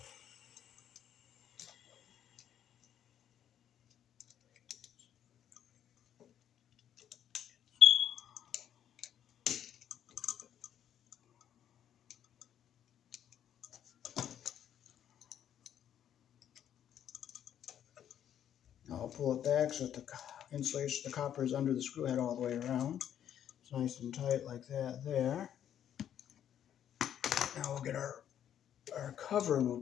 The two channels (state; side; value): quieter; right; 10.0 dB